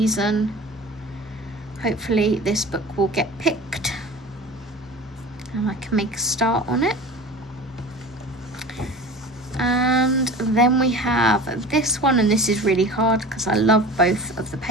Hopefully this book will get picked. and I can make a start on it. And then we have this one, and this is really hard because I love both of the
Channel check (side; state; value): both; normal; correlation 0.36